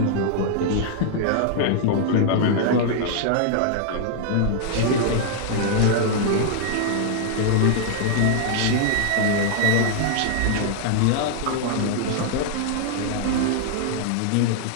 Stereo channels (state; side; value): different; both; correlation 0.00